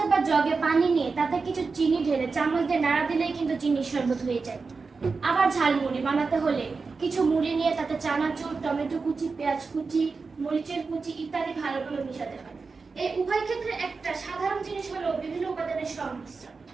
বা জগে পানি নিয়ে তাতে কিছু চিনি ঢেলে চামচ দিয়ে নাড়া দিলেই কিন্তু চিনির শরবত হয়ে যায়। আবার ঝালমুড়ি বানাতে হলে কিছু মুড়ি নিয়ে তাতে চানাচুর, টমেটো কুচি, পেঁয়াজ কুচি, মরিচের কুচি ইত্যাদি ভালোভাবে মিশাতে হয়। এই উভয় ক্ষেত্রে একটা সাধারণ জিনিস হলো বিভিন্ন উপাদানের সংমিশ্রণ।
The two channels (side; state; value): left; quieter; 4.5 dB